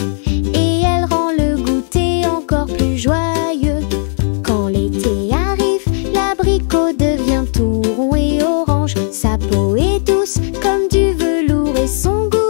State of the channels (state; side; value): silent; right; digital silence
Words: et elle rend le goûter encore plus joyeux. Quand l'été arrive, l'abricot devient tout rond et orange. Sa peau est douce comme du velours et son